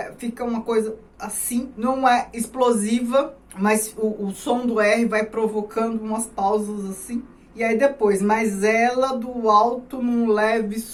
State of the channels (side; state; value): both; identical; correlation 1.00